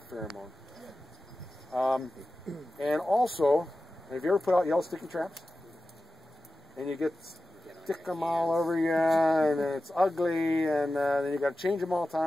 the pheromone. And also, have you ever put out yellow sticky traps? And you stick them all over you, and it's ugly, and then you got to change them all the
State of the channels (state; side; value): normal; both; correlation 0.94